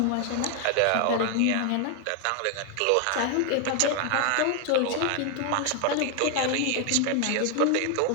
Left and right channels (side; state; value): both; different; correlation 0.01